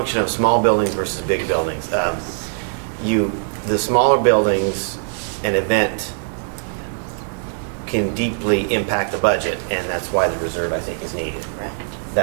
of small buildings versus big buildings. The smaller buildings, an event can deeply impact the budget, and that's why the reserve, I think, is needed. Right.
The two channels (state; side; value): silent; left; digital silence